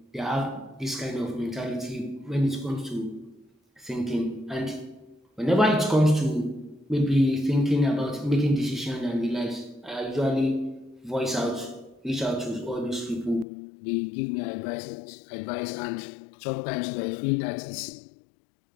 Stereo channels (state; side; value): drops out; right; at 13.5 s